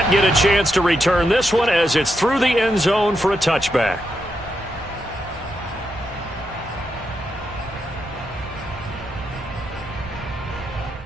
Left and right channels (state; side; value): normal; both; correlation 0.83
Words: get a chance to return this one as it's through the end zone for a touchback.